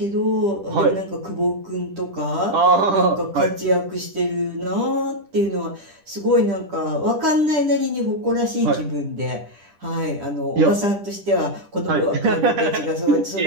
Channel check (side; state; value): left; late; 10 ms